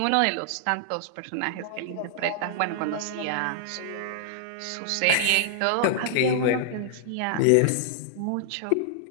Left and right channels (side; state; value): both; different; correlation -0.01